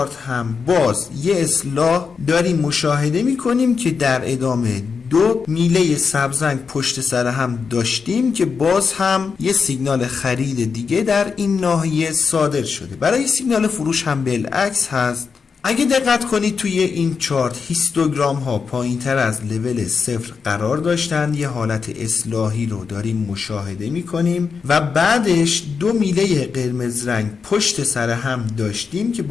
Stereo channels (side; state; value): right; quieter; 5.5 dB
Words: هم باز یه اصلاح داریم مشاهده میکنیم که در ادامه دو میله سبز رنگ پشت سر هم داشتیم که باز هم یه سیگنال خرید دیگه در این ناحیه صادر شده. برای سیگنال فروش هم بالعکس هست. اگه دقت کنید توی این چارت هیستوگرام ها پایین تر از لول 0 قرار داشتن، یه حالت اصلاحی رو داریم مشاهده میکنیم و بعدش دو میله قرمز رنگ پشت سر هم داشتیم که